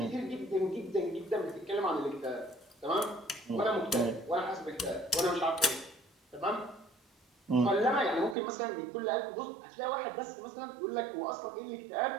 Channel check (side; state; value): left; drops out; at 8.3 s